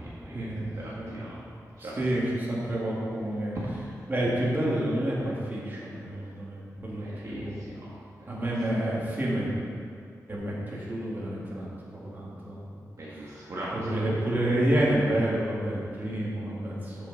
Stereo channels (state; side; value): normal; both; correlation 0.87